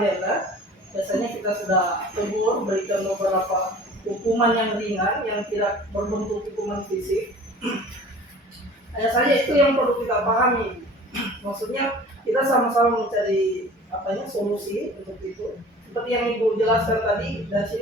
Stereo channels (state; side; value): normal; both; correlation 0.44